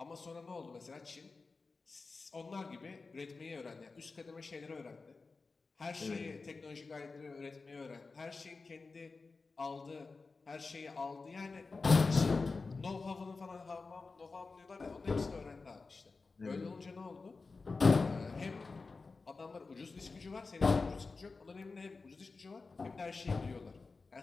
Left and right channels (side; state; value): right; quieter; 4.1 dB